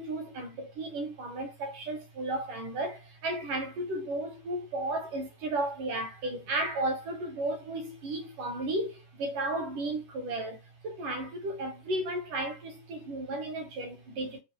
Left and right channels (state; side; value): late; left; 10 ms